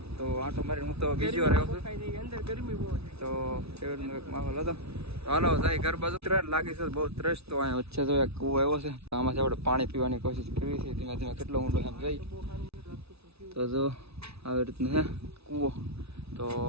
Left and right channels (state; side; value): late; left; 0.79 ms